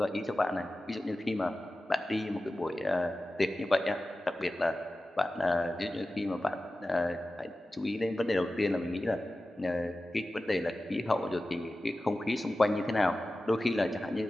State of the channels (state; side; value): normal; both; correlation 0.95